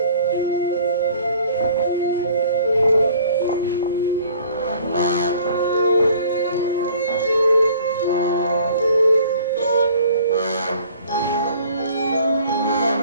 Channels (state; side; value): inverted; both; correlation -0.53